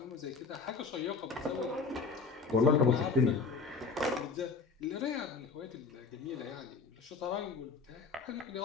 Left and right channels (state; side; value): quieter; right; 4.7 dB